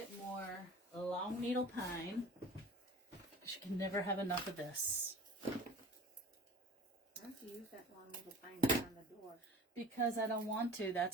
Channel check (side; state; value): both; normal; correlation 0.42